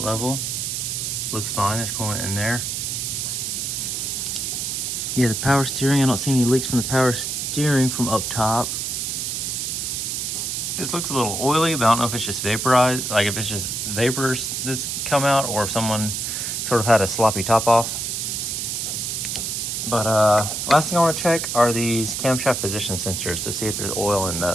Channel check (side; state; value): right; noise; hiss, 2 dB below the sound